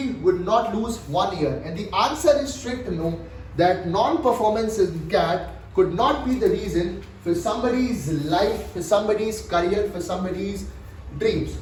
would not lose 1 year. And the answer is strict no, that non-performance in CAT could not be the reason for somebody's life, for somebody's career, for somebody's dreams.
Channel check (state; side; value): identical; both; correlation 1.00